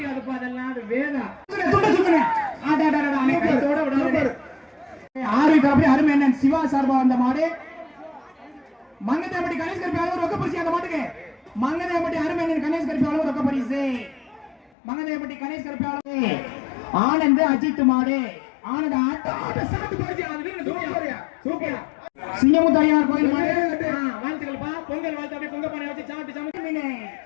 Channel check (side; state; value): right; drops out; at 14.7 s